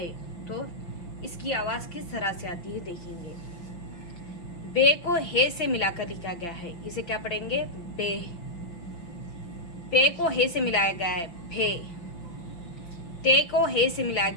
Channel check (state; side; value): late; right; 6.0 ms